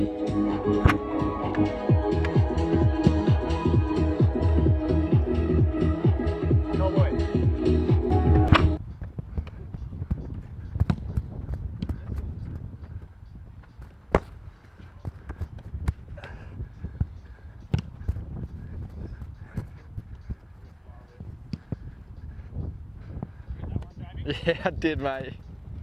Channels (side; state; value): both; identical; correlation 1.00